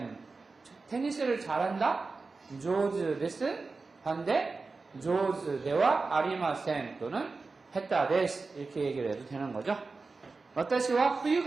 테니스를 잘한다? 上手です. 반대? 上手ではありません 또는 下手です 이렇게 얘기를 해도 되는 거죠. 私は冬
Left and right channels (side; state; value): left; quieter; 4.0 dB